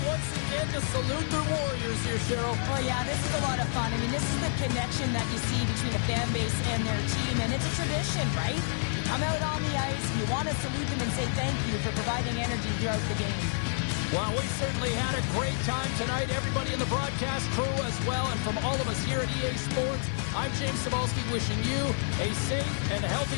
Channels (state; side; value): silent; right; digital silence